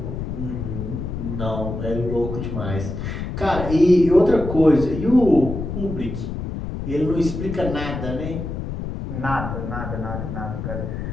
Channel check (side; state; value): left; noise; rumble, 5 dB below the sound